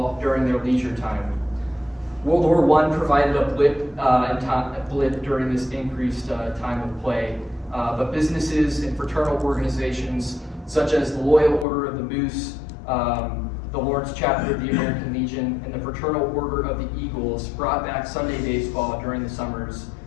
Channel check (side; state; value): right; drops out; at 11.7 s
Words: during their leisure time. World War I provided a blip during this increased time of play, but businesses and fraternal organizations such as the Loyal Order of the Moose, the Lawrence chapter of the American Legion, and the Fraternal Order of the Eagles brought back Sunday baseball during the summers